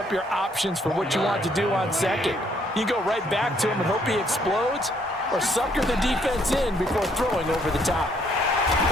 your options for what you want to do on 2nd. You go right back to him and hope he explodes, or sucker the defense in before throwing over the top.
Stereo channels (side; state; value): both; normal; correlation 0.68